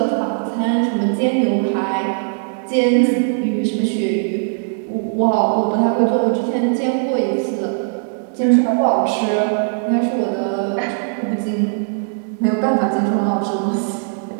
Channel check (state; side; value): silent; left; digital silence